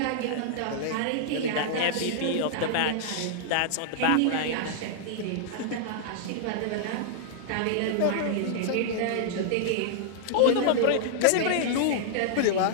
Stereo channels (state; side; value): different; both; correlation -0.01